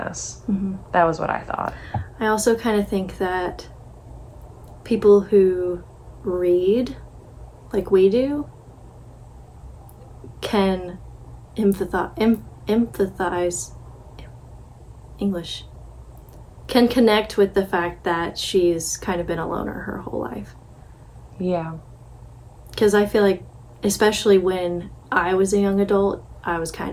Mm-hmm. That was what I thought. I also kind of think that people who read like we do can empathize English, can connect with the fact that she's kind of been a loner her whole life. Yeah. Because I feel like, especially when I was a young adult, I was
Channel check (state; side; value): identical; both; correlation 1.00